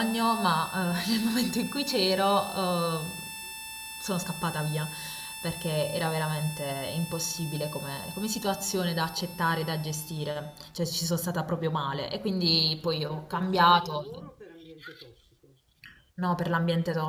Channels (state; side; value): identical; both; correlation 1.00